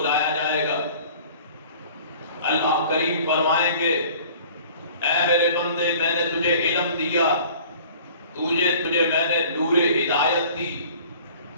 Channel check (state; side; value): inverted; both; correlation -0.48